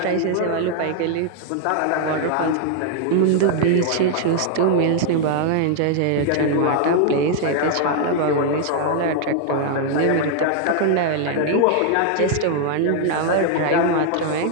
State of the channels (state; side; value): different; both; correlation 0.00